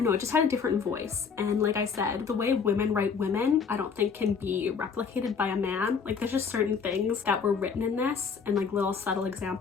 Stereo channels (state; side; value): quieter; right; 5.9 dB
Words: know, it just had a different voice. And like I said, the way women write women, I don't think can be replicated by a man. Like, there's just certain things that were written in this and like little subtle